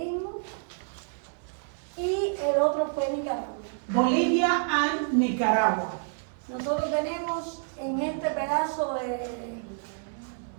y el otro fue Nicaragua. Bolivia and Nicaragua. Nosotros tenemos en este pedazo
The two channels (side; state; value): left; silent; 59 dB below the other